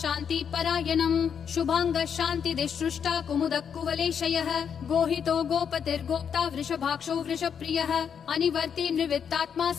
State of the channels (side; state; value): right; quieter; 7.5 dB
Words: शान्ति परायणम् शुभाङ्गः शान्तिदिसृष्टा कुमुदः कुवलेशयः गोहितो गोपतिर्गोप्ता वृषभाक्षो वृषप्रियः अनिवर्ति निवृत्तात्मा